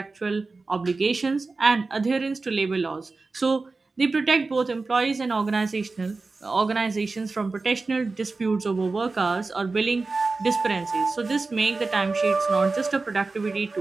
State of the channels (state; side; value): quieter; left; 3.8 dB